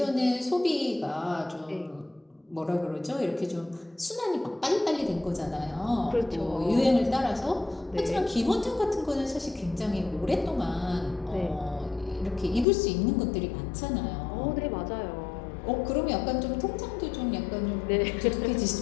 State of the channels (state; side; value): drops out; right; at 12.7 s